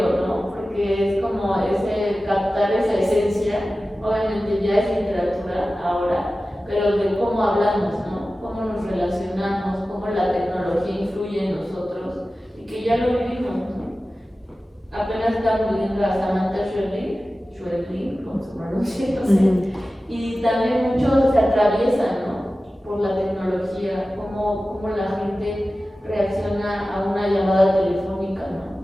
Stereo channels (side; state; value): both; normal; correlation 0.95